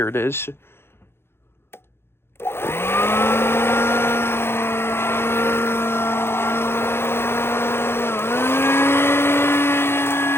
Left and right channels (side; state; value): right; late; 0.12 ms